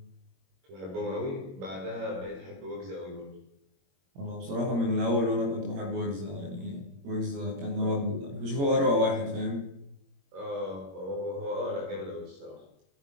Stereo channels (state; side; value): late; left; 21 ms